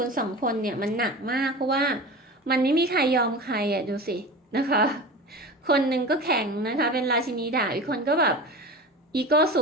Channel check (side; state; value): both; normal; correlation 0.32